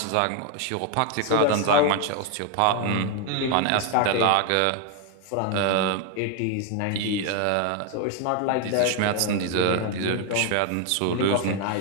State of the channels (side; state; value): both; different; correlation 0.01